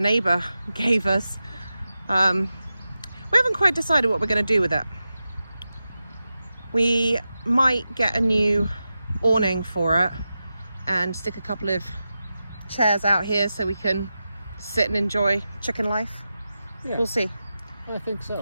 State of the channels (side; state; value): both; inverted; correlation -0.92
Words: gave us. We haven't quite decided what we're going to do with it. We might get a new awning for it and stick a couple of chairs out here so we can sit and enjoy chicken life. Yeah, We'll see. I think